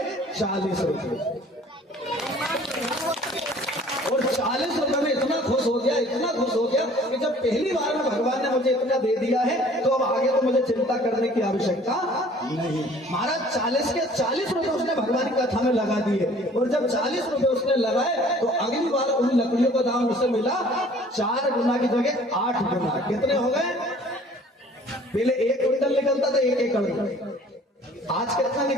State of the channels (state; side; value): normal; both; correlation 0.52